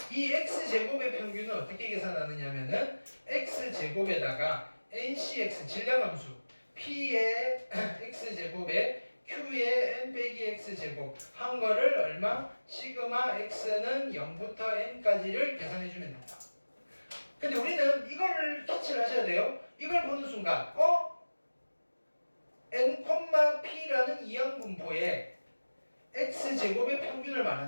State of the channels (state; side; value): inverted; both; correlation -1.00